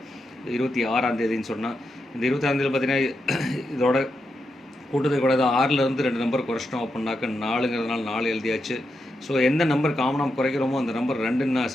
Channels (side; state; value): both; normal; correlation 0.85